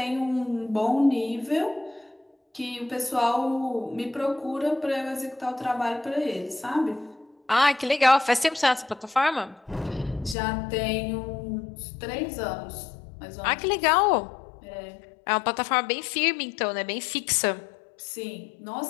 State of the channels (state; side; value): drops out; right; at 10.4 s